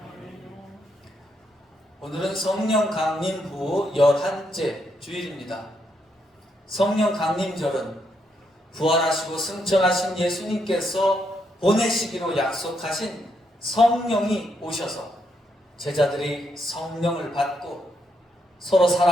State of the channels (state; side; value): normal; both; correlation 0.78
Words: 오늘은 성령 강림 후 11째 주일입니다. 성령 강림절은 부활하시고 승천하신 예수님께서 보내시기로 약속하신 성령이 오셔서 제자들이 성령을 받고 서로